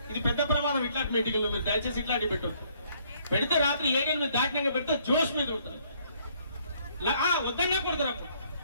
ఇది పెద్ద ప్రమాదం. ఇట్లాంటి మీటింగ్లో మీరు దయచేసి ఇట్లాంటి పెట్టదు. పెడితే రాత్రి 7 మీద దాటినాక పెడితే జోష్ మీద ఉంటుంది. వద్దన్నా కొడతారు. అప్పుడు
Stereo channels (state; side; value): inverted; both; correlation -0.65